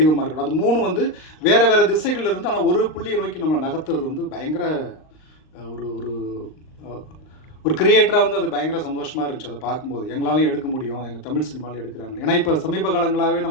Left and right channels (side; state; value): right; late; 39 ms